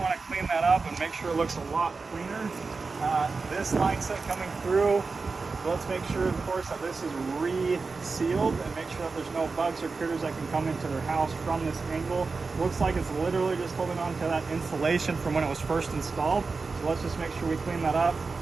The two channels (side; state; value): left; quieter; 4.3 dB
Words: to clean that up and make sure it looks a lot cleaner. This line set coming through, let's make sure, of course, that this is re-sealed and make sure that there's no bugs or critters that can come into their house from this angle. Looks like it's literally just holding on to that insulation from when it was first installed. So let's just make sure we clean that up.